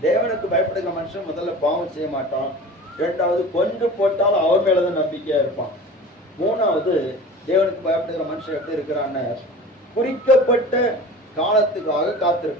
தேவனுக்கு பயப்படுகிற மனுஷன் முதல்ல பாவம் செய்ய மாட்டான். இரண்டாவது, கொன்று போட்டாலும் அவர் மேலதான் நம்பிக்கையா இருப்பான். மூணாவது, தேவனுக்கு பயப்படுகிற மனுஷன் எப்படி இருக்கிறான்னு, குறிக்கப்பட்ட காலத்துக்காக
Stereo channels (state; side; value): normal; both; correlation 0.38